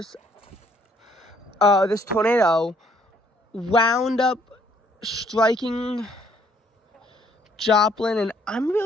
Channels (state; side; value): normal; both; correlation 0.65